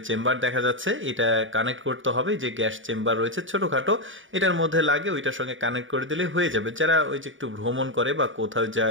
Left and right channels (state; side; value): late; left; 0.57 ms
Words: চেম্বার দেখা যাচ্ছে, এটা কানেক্ট করতে হবে। যে গ্যাস চেম্বার রয়েছে ছোটখাটো, এটার মধ্যে লাগে, ওইটার সঙ্গে কানেক্ট করে দিলে হয়ে যাবে। যারা ওই যে একটু ভ্রমণ করে বা কোথাও